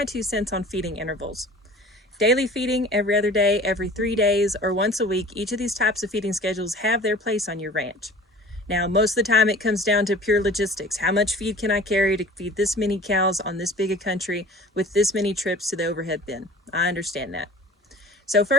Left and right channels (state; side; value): normal; both; correlation 0.44